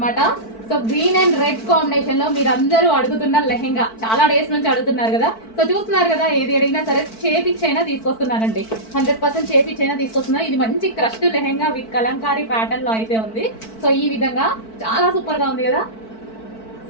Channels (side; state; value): right; late; 4.5 ms